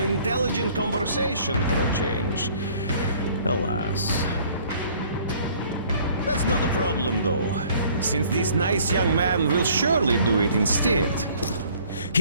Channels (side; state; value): both; inverted; correlation -0.56